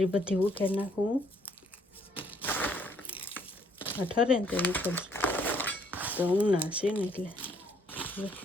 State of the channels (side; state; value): both; normal; correlation 0.66